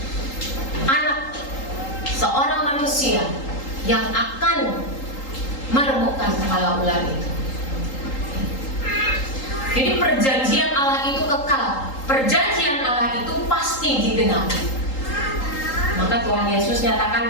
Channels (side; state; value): right; late; 3.8 ms